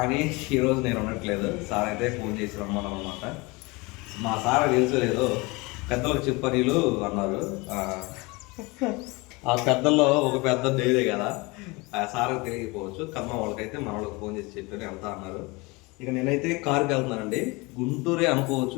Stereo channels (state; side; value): quieter; right; 25.3 dB